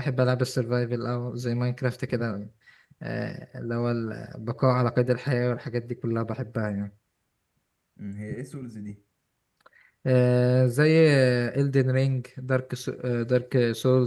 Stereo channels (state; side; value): identical; both; correlation 1.00